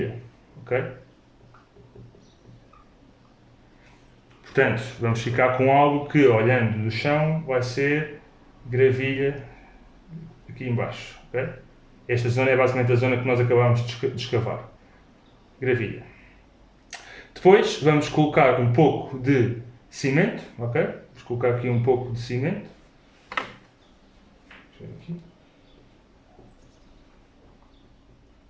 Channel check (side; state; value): both; identical; correlation 1.00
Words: ok? Portanto, vamos ficar com algo que, olhando do chão, vai ser gravilha aqui embaixo, ok? Esta zona é basicamente a zona que nós acabamos de escavar. Gravilha. Depois vamos colocar um pouco de cimento, ok? Vamos colocar aqui um pouco de cimento. Deixa eu ver aqui.